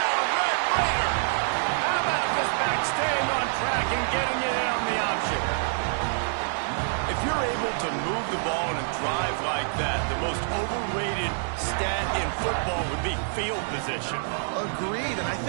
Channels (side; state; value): left; silent; digital silence